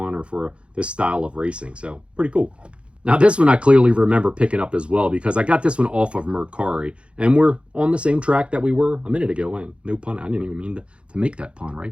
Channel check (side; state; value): left; late; 0.058 ms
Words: or for this style of racing. So pretty cool. Now this one I clearly remember picking up as well because I got this one off of Mercari, and we're on the same track that we were a minute ago. And no pun, I didn't even mean to make that pun,